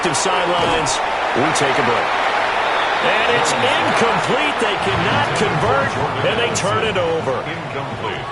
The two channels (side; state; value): both; identical; correlation 1.00